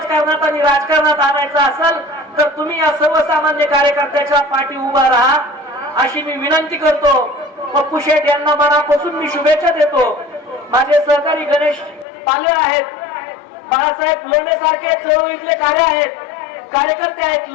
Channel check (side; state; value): right; drops out; at 12.1 s